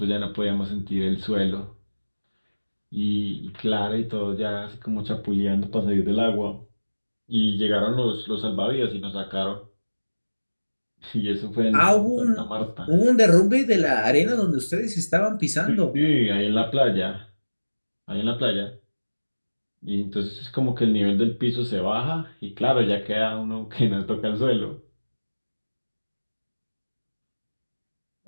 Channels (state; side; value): inverted; both; correlation -1.00